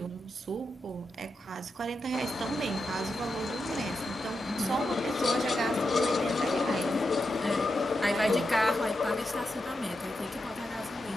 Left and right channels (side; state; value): both; normal; correlation 0.87